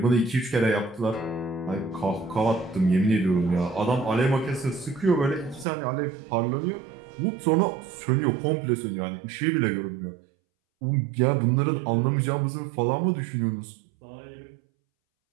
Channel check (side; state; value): left; drops out; at 5.7 s